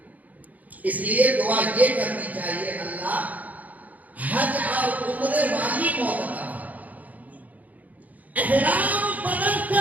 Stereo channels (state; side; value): late; left; 0.077 ms